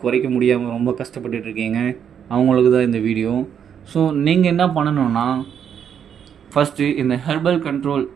குறைக்க முடியாமல் ரொம்ப கஷ்டப்பட்டுட்டு இருக்கீங்க, அவங்களுக்கு தான் இந்த வீடியோ. ஸோ நீங்கள் என்ன பண்ணணுன்னா, ஃபஸ்ட்டு இந்த ஹெர்பல் கண்ட்ரோல்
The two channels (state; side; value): quieter; left; 8.3 dB